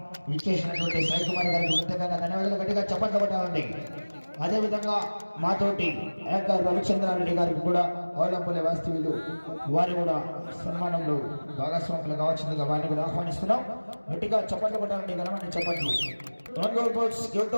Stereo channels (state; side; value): inverted; both; correlation -1.00